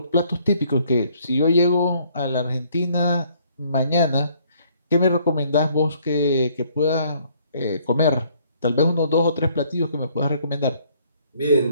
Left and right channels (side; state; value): both; inverted; correlation -0.64